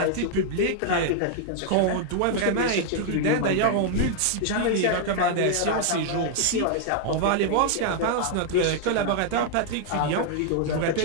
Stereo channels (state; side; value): different; both; correlation 0.00